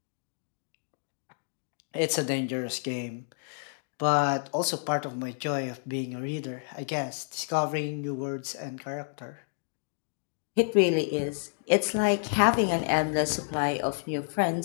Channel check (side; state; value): right; silent; digital silence